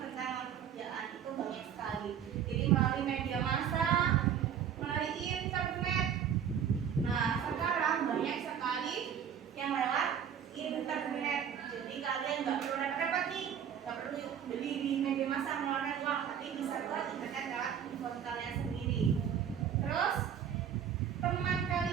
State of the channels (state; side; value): quieter; left; 8.6 dB